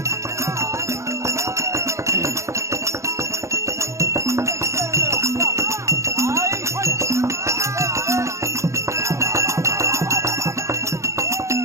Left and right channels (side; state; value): left; late; 0.14 ms